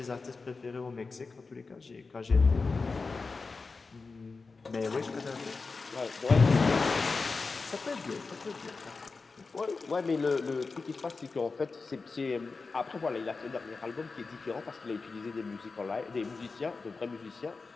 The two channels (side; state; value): right; quieter; 4.2 dB